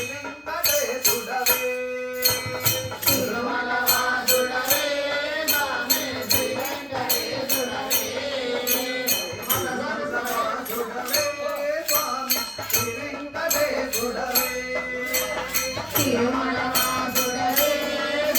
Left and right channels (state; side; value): identical; both; correlation 1.00